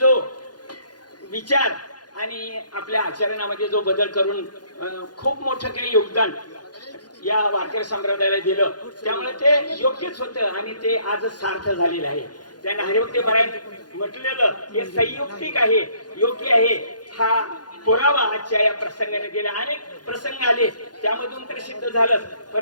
विचार आणि आपल्या आचरणामध्ये जो बदल करून खूप मोठं काही योगदान या वारकरी संप्रदायाला दिलं, त्यामुळे ते योग्यच होतं आणि ते आज सार्थ झालेलं आहे. त्यांना हरिभक्तीपरायण म्हटलेलं हे संयुक्तिक आहे, योग्य आहे. हा पुरावा आजच्या या प्रसंगाने दिला. अनेक प्रसंग आले त्यामधून तर सिद्ध झालं,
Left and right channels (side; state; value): right; late; 0.70 ms